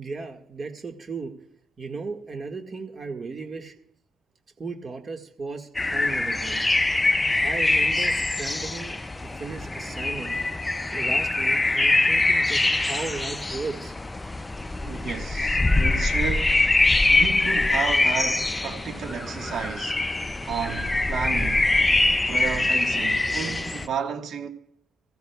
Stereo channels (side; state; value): both; normal; correlation 0.94